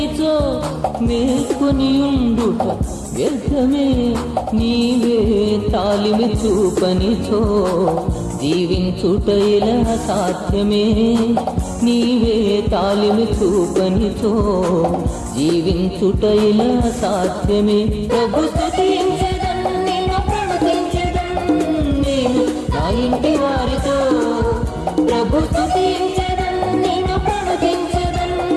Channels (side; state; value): both; identical; correlation 1.00